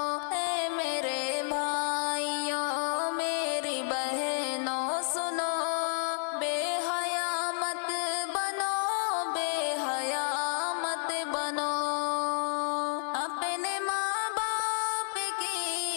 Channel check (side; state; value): right; silent; 57 dB below the other